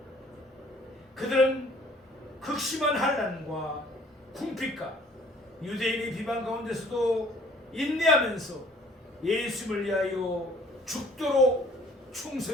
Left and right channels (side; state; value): both; normal; correlation 0.57